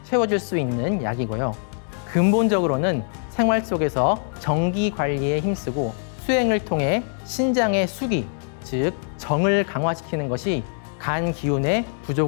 채워줄 수 있는 약이고요. 근본적으로는 생활 속에서 정기 관리에 힘쓰고 수행을 통해 신장의 수기, 즉 정을 강화시키는 것이 간 기운의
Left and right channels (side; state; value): right; silent; 63 dB below the other